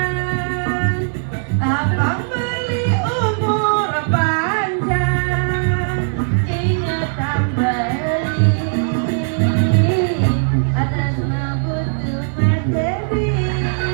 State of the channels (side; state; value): left; silent; digital silence